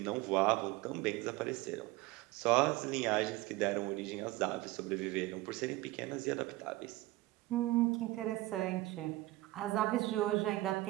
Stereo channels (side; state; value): left; quieter; 18.7 dB